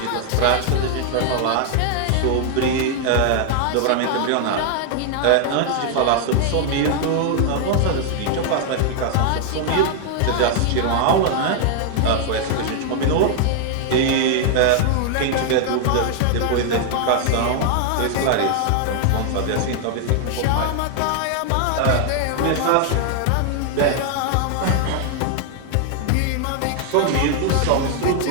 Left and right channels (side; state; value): both; different; correlation 0.00